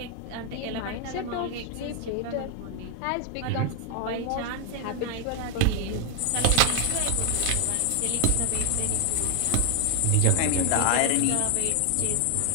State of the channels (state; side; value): different; both; correlation 0.00